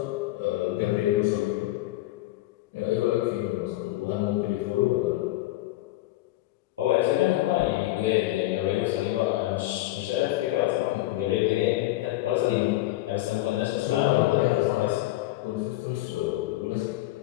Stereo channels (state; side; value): quieter; right; 17.0 dB